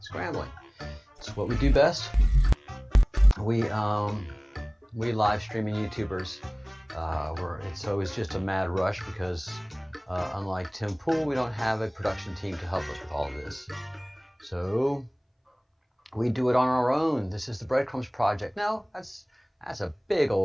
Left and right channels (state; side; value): identical; both; correlation 1.00